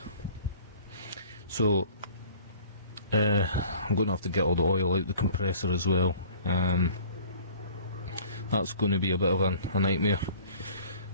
So I'm going to have to get all the oil out the compressor as well. That's going to be a bit of a nightmare.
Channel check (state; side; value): inverted; both; correlation -0.48